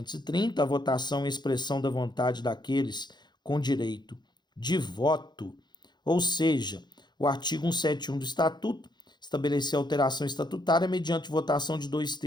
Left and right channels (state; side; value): late; right; 0.21 ms